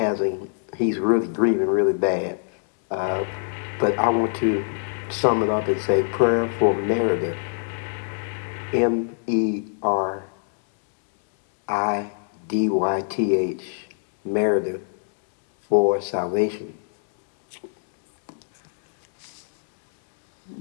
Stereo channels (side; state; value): right; silent; digital silence